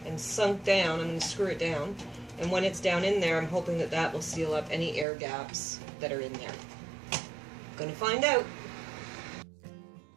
and sunk down, I'm going to screw it down, and when it's down in there, I'm hoping that that will seal up any air gaps that are in there. Gonna find out.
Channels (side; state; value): left; drops out; at 5.1 s